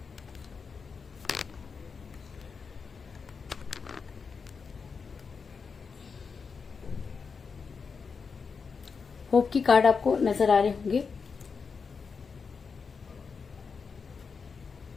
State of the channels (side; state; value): right; quieter; 5.4 dB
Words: होप की कार्ड आपको नजर आ रहे होंगे।